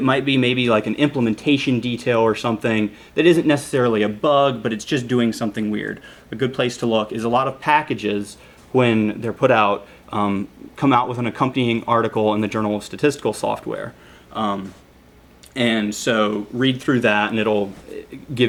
might be maybe like an implementation detail or something that isn't necessarily a bug, but it's just doing something weird. A good place to look is a lot of packages, when they're put out, come out with an accompanying article in the Journal of Statistical Software. And so read through that, and it'll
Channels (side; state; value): both; identical; correlation 1.00